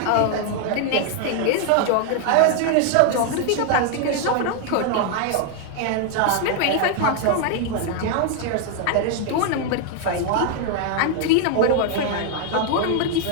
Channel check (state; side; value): different; both; correlation 0.00